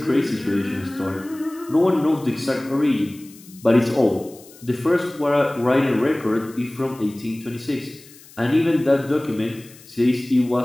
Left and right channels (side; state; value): left; noise; hiss, 22 dB below the sound